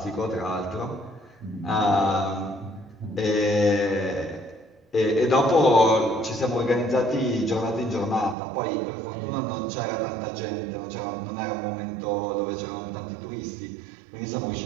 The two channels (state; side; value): drops out; left; at 8.3 s